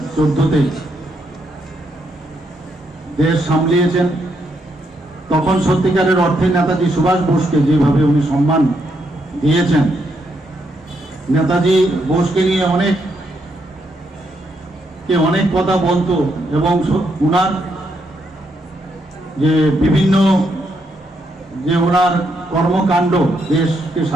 দেশ সামলিয়েছেন তখন সত্যিকারের অর্থে নেতাজি সুভাষ বোসকে যেভাবে উনি সম্মান দিয়েছেন, নেতাজি বোসকে নিয়ে অনেক কথা বলতো এবং উনার যে বিভিন্ন যে ওনার কর্মকাণ্ড দেশকে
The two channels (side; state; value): both; normal; correlation 0.78